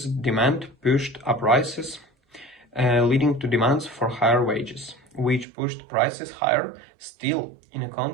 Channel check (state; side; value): drops out; left; at 5.5 s